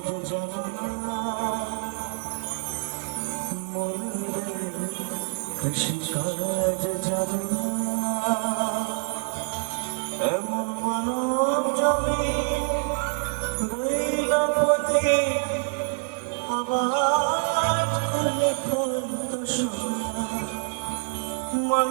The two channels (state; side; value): silent; left; digital silence